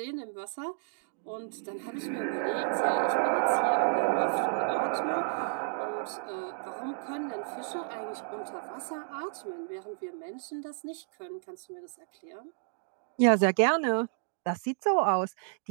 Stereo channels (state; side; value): silent; left; digital silence